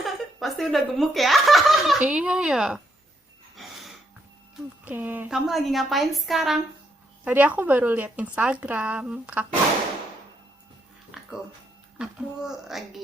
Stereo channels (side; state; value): both; normal; correlation 0.76